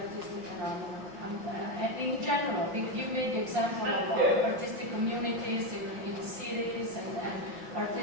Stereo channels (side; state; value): left; late; 5.6 ms